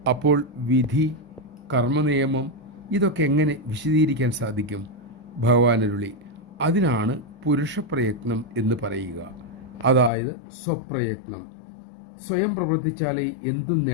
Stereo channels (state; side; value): drops out; right; at 10.1 s